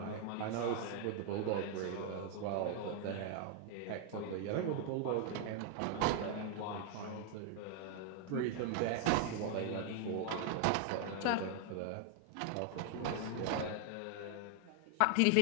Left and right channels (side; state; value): both; different; correlation 0.00